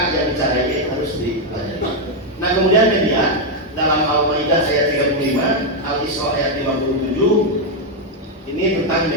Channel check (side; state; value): both; normal; correlation 0.02